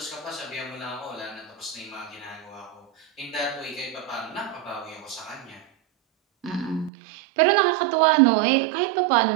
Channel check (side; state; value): left; drops out; at 6.9 s